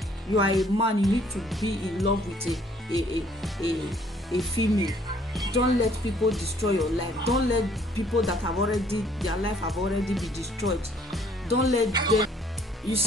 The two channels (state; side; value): normal; both; correlation 0.61